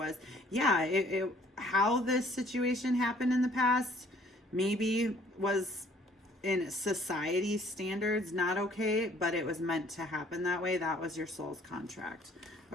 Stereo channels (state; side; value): normal; both; correlation 0.58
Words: yeah, how this situation happened in the past maybe was in society standards not okay, but it was meant to happen that way. That was your soul's contract.